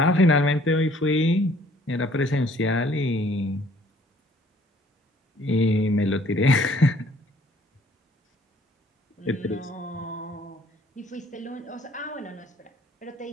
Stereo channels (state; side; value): normal; both; correlation 0.59